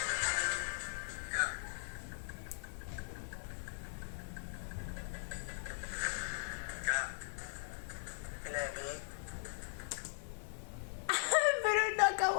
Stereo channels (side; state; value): right; silent; 51 dB below the other